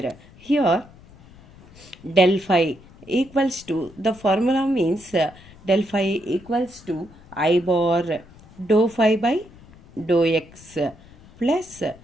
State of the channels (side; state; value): left; noise; rumble, 23 dB below the sound